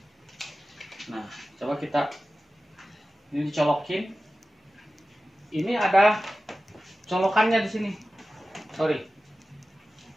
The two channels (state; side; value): normal; both; correlation 0.95